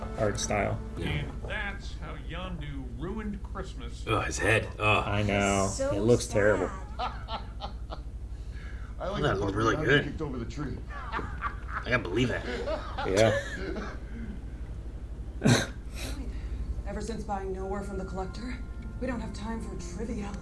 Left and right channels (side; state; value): both; identical; correlation 1.00